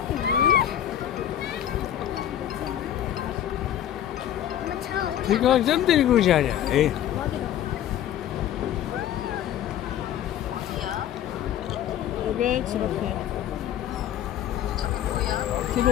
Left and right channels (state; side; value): quieter; right; 11.0 dB